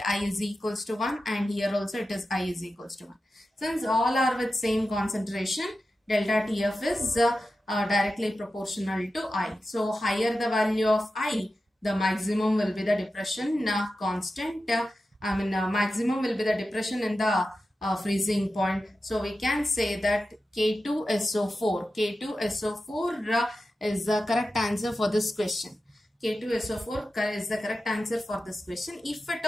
I is equals to 1 and here also it is I is equals to 1. Since all are with same concentration, delta TF is directly proportional to I. So higher the value of I, the maximum will be the depression constant. Maximum will be the depression in the freezing point. So we can say that K2SO4 is the correct answer for this question. K2SO4 is the correct answer for this question. If at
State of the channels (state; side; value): normal; both; correlation 0.92